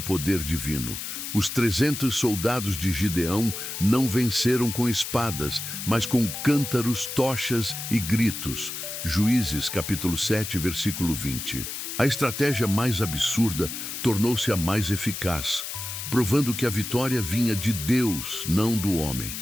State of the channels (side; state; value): left; noise; hiss, 6 dB below the sound